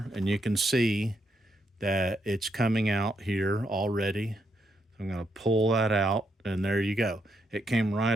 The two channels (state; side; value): normal; both; correlation 0.79